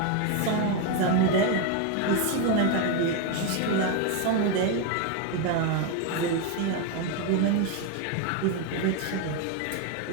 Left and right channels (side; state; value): both; different; correlation 0.02